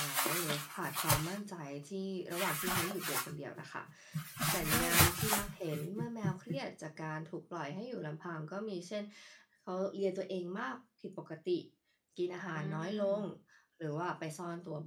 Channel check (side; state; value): both; identical; correlation 1.00